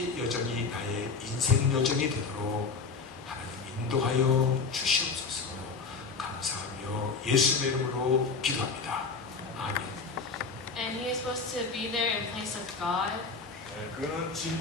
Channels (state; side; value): quieter; right; 4.5 dB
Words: 여정이 나의 인생 여정이 되도록 하나님 인도하여 주시옵소서. 감사하며 예수의 이름으로 기도합니다. 아멘. And he is supposed to be there in place of God. 네, 그는